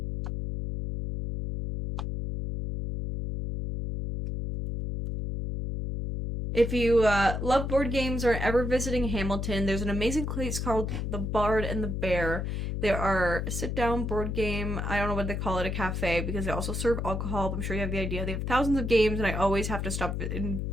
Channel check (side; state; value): left; noise; hum, 2 dB below the sound